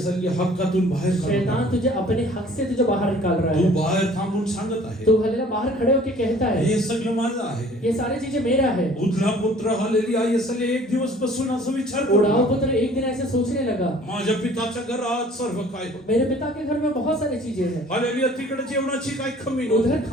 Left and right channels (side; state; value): both; normal; correlation 0.52